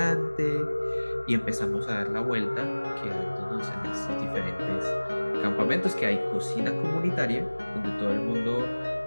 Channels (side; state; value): both; inverted; correlation -1.00